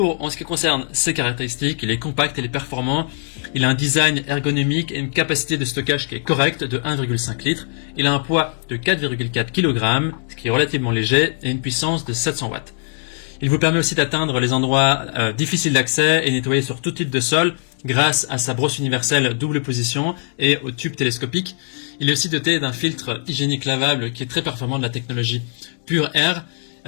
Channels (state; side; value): silent; right; 63 dB below the other